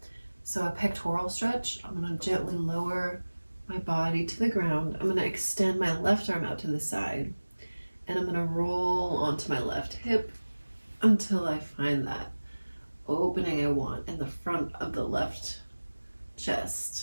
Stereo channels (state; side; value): inverted; both; correlation -1.00